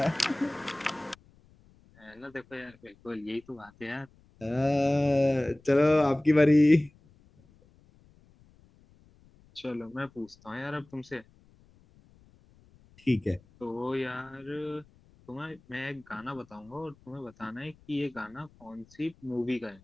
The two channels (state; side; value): noise; left; rumble, 28 dB below the sound